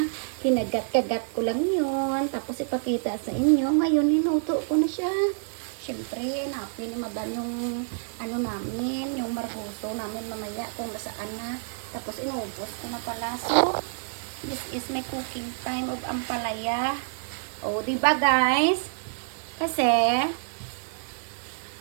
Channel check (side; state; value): left; silent; digital silence